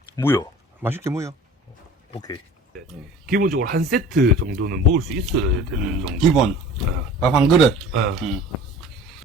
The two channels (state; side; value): normal; both; correlation 0.43